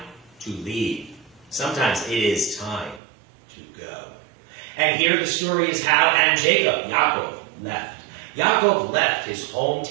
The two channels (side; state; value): left; drops out; at 3.0 s